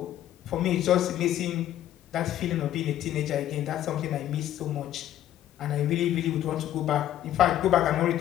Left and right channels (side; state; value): right; quieter; 12.2 dB